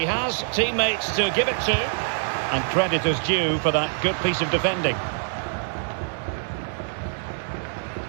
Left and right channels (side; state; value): left; silent; digital silence